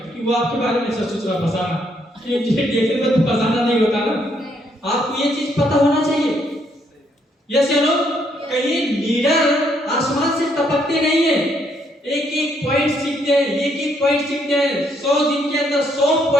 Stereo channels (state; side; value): normal; both; correlation 0.72